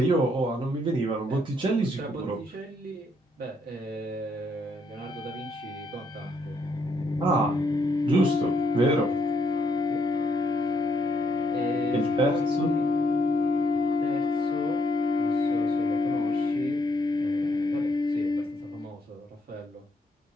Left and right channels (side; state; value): both; normal; correlation 0.73